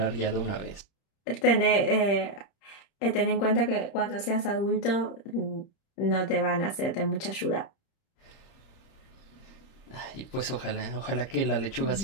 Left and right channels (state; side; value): late; right; 30 ms